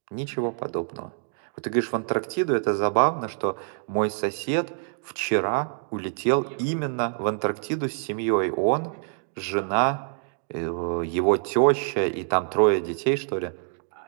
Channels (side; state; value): left; silent; digital silence